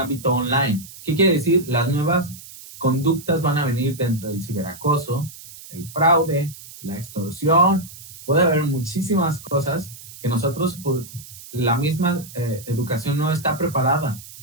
online. ¿Qué quiere decir? Las nuevas conductas van a venir dentro del ciberacoso, el fraude, la extorsión. Puede haber muchísimas cosas que nosotros, la misma educación no está preparada.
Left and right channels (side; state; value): right; noise; hiss, 17 dB below the sound